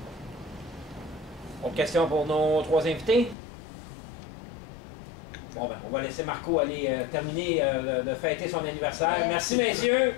Autre question pour nos 3 invités? Bon, ben, on va laisser Marco aller terminer de fêter son anniversaire. Merci, messieurs.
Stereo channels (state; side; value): drops out; right; at 3.4 s